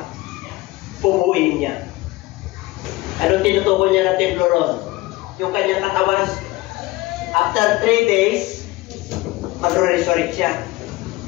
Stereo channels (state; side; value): quieter; right; 19.8 dB